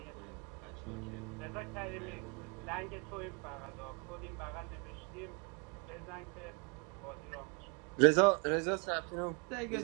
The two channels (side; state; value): left; quieter; 34.9 dB